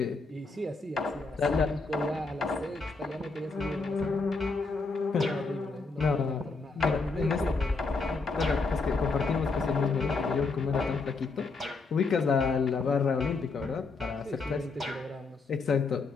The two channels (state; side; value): quieter; right; 4.0 dB